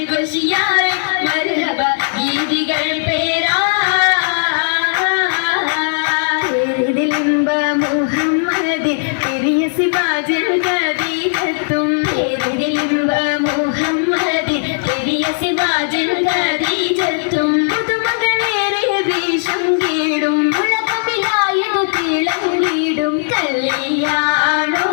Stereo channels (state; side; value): silent; right; digital silence